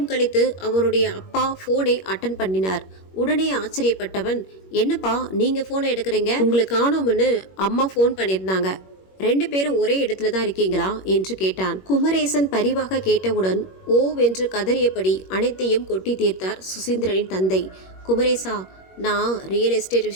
கழித்து அவனுடைய அப்பா ஃபோனை அட்டன் பண்ணினார். உடனே ஆச்சரியப்பட்டவன், என்னப்பா நீங்கள் ஃபோனை எடுக்கிறீங்க? உங்களுக்கு காணோம்னு அம்மா ஃபோன் பண்ணியிருந்தாங்க, 2 பேரும் ஒரே இடத்துல தான் இருக்கீங்களா என்று கேட்டான். குமரேசன் பரிவாக கேட்டவுடன் ஓவென்று கதறியபடி அனைத்தையும் கொட்டி தீர்த்தார் சுசீந்திரனின் தந்தை. குமரேசா, நான் ரியல் எஸ்டேட்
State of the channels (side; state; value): right; late; 21 ms